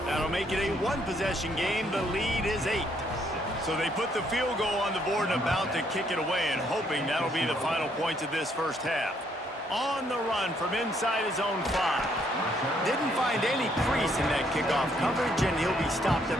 That'll make it a 1-possession game. The lead is 8. So they put the field goal on the board and about to kick it away, and hoping that'll be the final points of this 1st half. On the run from inside his own 5. Didn't find any crease in that kickoff coverage, and he'll be stopped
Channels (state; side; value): normal; both; correlation 0.70